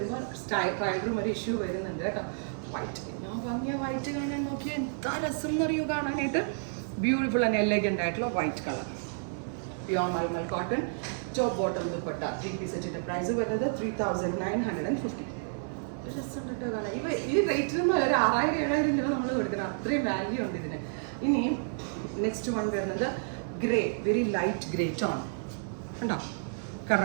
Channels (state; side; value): silent; left; 57 dB below the other